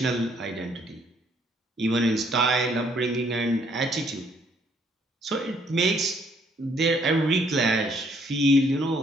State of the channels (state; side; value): normal; both; correlation 0.66